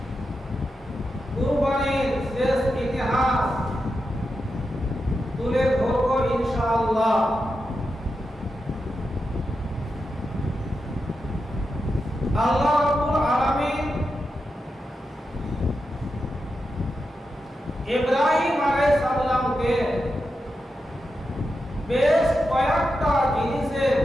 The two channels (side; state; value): both; normal; correlation 0.88